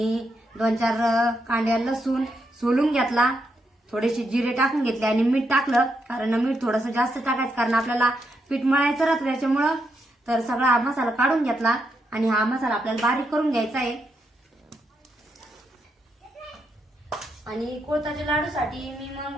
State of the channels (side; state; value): both; normal; correlation 0.81